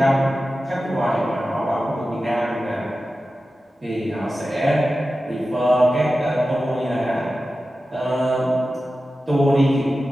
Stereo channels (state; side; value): normal; both; correlation 0.94